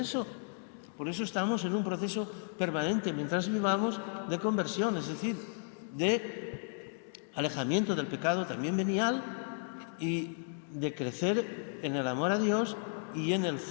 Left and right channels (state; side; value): silent; right; 55 dB below the other